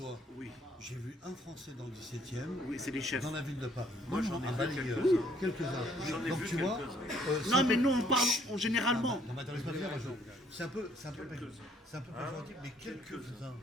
Oui. J'ai vu un Français dans le 17e, Oui, c'est des chefs. dans la ville de Paris. Moi, j'en ai balayeur. Quelques-uns. Donc, tu vois. Non, mais nous, on parle généralement. Non, mais attends, laisse-moi dire, Jean. C'est un peu péjoratif, mais quelques-uns.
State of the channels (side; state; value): both; normal; correlation 0.64